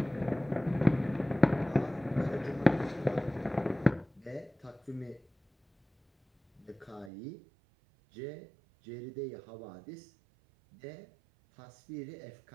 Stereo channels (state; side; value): drops out; left; at 7.1 s